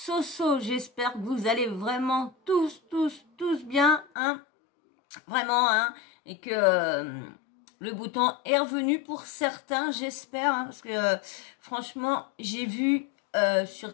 j'espère que vous allez vraiment tous bien, hein, vraiment, hein, et que le beau temps est revenu pour certains, j'espère, hein, parce que franchement, j'ai vu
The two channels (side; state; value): right; drops out; at 4.0 s